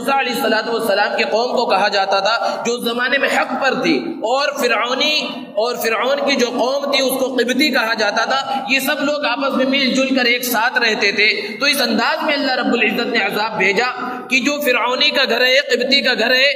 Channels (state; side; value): identical; both; correlation 1.00